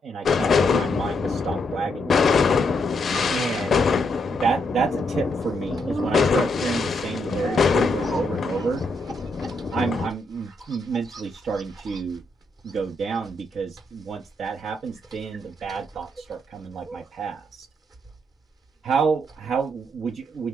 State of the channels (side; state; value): both; normal; correlation 0.78